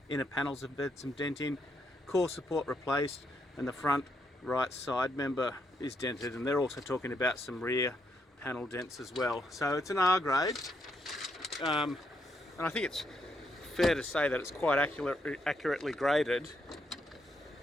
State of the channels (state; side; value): normal; both; correlation 0.77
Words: inner panels have had some denting, core support replaced, and the front right side member is dented, and they're also talking about some rear panel dents as well. So it's an R grade, and I think it's fair to say that it's quite accurately graded.